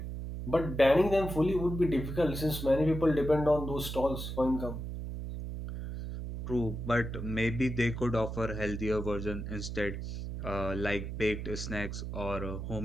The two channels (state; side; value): noise; right; hum, 6 dB below the sound